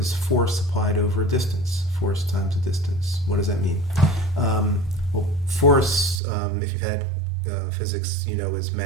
force applied over a distance. Force times a distance. What does that mean? Well, force, if you've had physics, you know, is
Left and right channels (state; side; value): drops out; left; at 6.2 s